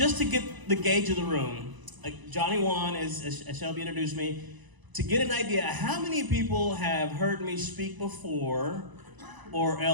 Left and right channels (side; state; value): left; late; 1.0 ms